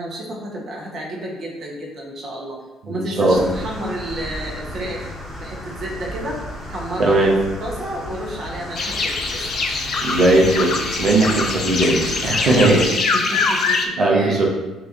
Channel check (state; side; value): normal; both; correlation 0.66